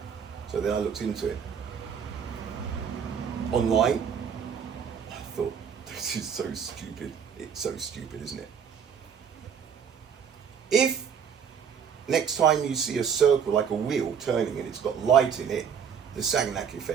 So then I looked into it. Online, I thought, this is so stupid. It's so stupid, isn't it? If next time you see a circle like a wheel turning and it's got light in it, the Sagnac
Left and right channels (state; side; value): quieter; left; 7.4 dB